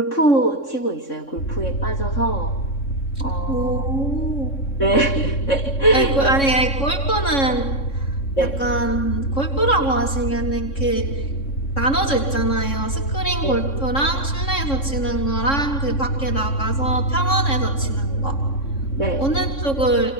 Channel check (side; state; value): right; late; 3.6 ms